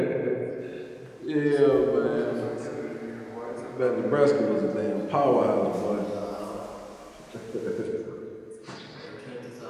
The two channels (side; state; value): both; identical; correlation 1.00